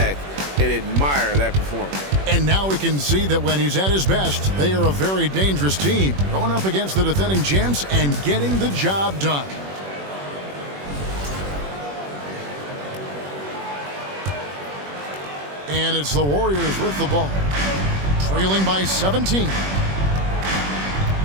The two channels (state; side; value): late; left; 21 ms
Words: and admire that performance. And now we can see that when he's at his best, they are a very dangerous team, going up against the defending champs and getting the job done. And it's the Warriors with the ball, trailing by 17.